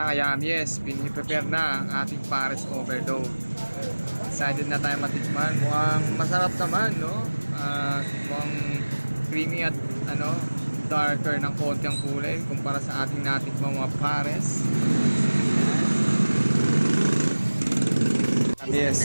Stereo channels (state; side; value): inverted; both; correlation -1.00